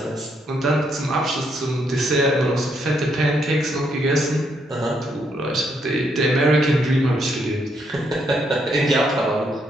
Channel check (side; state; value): both; normal; correlation 0.75